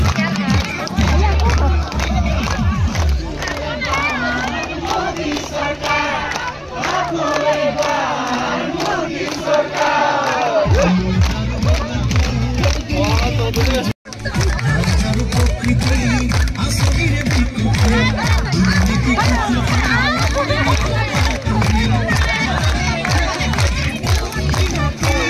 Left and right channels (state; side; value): identical; both; correlation 1.00